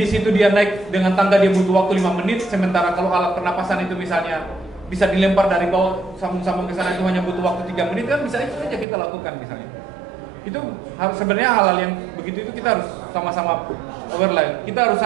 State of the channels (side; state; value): left; drops out; at 8.8 s